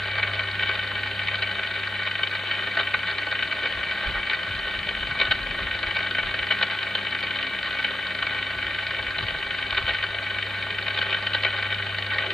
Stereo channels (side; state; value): both; normal; correlation 0.88